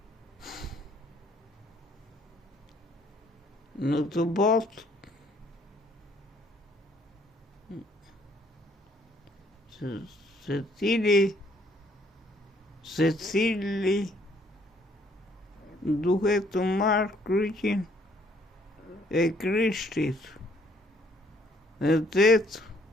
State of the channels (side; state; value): both; normal; correlation 0.64